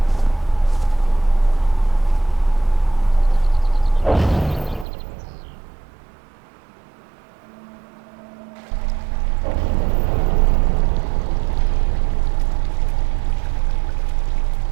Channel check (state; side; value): drops out; left; at 4.9 s